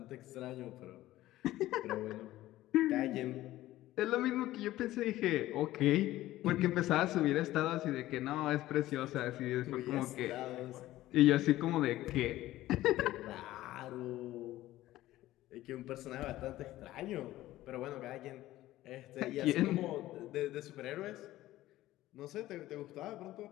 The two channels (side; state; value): right; quieter; 15.6 dB